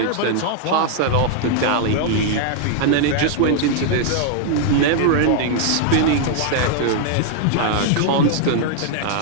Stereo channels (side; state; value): both; different; correlation 0.00